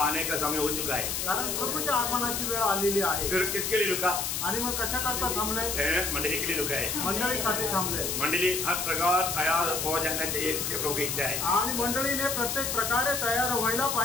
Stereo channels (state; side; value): noise; left; hiss, 1 dB below the sound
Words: का समय हो चुका है। कारण प्रभूच्या आगमनाची वेळ आलेली आहे। फिर किसके लिए रुका? आणि मग कशा करता थांबले? मंडली के लिए रुका है। मंडळीसाठी थांबले। मंडली हर प्रकार तैयार हो जाना चाहिए, इसके प्रभु की इच्छा है। आणि मंडळीने प्रत्येक प्रकारे तयार व्हायला